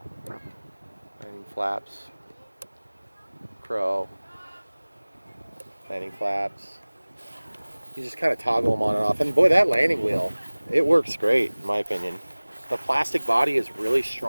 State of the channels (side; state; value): both; inverted; correlation -1.00